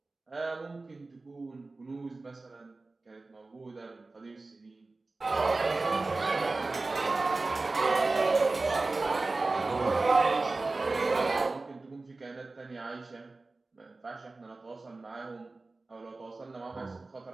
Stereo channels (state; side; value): quieter; left; 3.4 dB